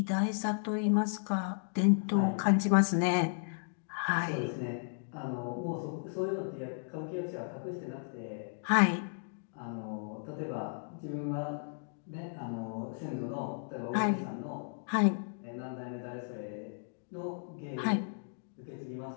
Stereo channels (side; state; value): right; silent; digital silence